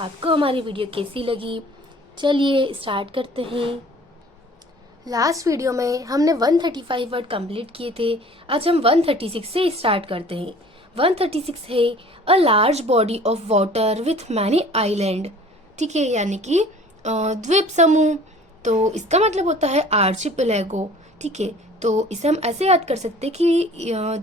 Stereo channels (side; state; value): both; normal; correlation 0.49